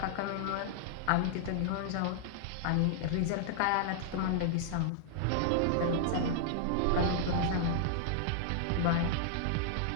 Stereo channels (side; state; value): both; different; correlation -0.01